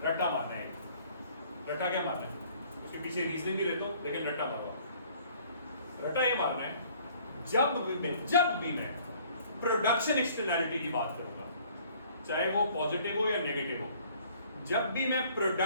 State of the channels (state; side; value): inverted; both; correlation -0.57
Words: रट्टा मारना है, रट्टा क्या मारना है? उसके पीछे रीजनिंग भी देता हूं, लेकिन रट्टा मारवा। रट्टा ये मारना है, जब भी मैं प्रोडक्शन एक्सटर्नैलिटी की बात करूंगा, चाहे वो पॉजिटिव हो या नेगेटिव हो, जब भी मैं